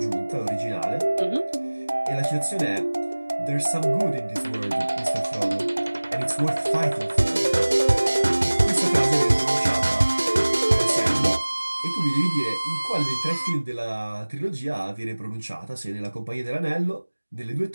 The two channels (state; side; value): inverted; both; correlation -1.00